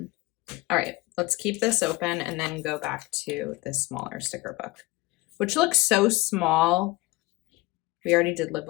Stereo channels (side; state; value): right; quieter; 21.2 dB